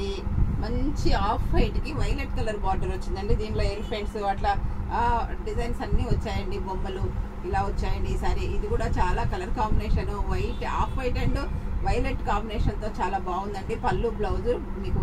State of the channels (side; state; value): both; identical; correlation 1.00